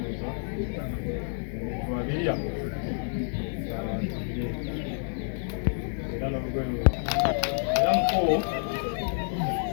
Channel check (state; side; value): silent; right; digital silence